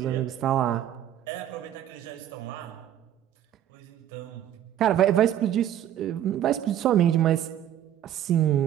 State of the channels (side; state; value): left; quieter; 11.2 dB